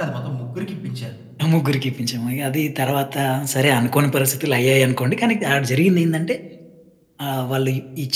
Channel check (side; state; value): both; identical; correlation 1.00